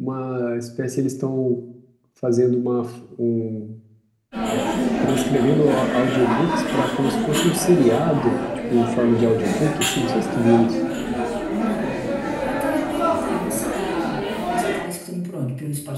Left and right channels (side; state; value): both; identical; correlation 1.00